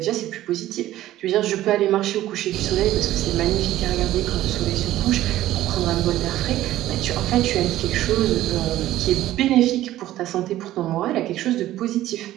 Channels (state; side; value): quieter; left; 14.3 dB